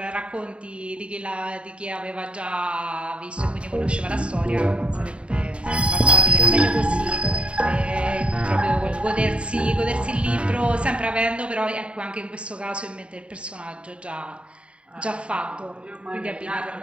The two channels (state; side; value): late; left; 0.058 ms